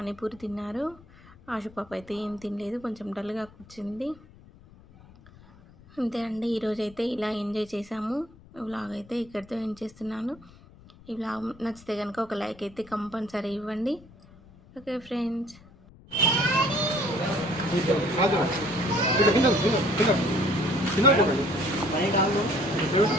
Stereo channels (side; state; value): left; noise; rumble, 23 dB below the sound